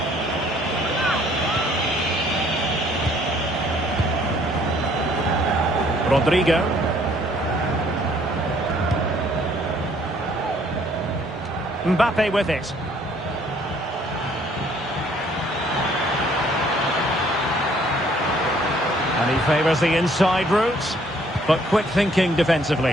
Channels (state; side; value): normal; both; correlation 0.61